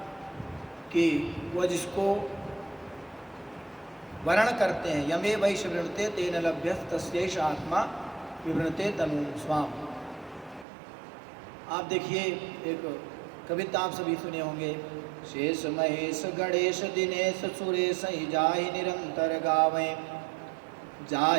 कि वह जिसको वर्ण करते हैं, यमे वैश वृणते तेन लभ्यस तस्यैष आत्मा विवृणते तनु स्वाम। आप देखिए, एक कविता आप सभी सुने होंगे, शेष महेश गणेश दिनेश सुरेश ही जाहि निरंतर गावें,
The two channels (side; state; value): left; drops out; at 10.7 s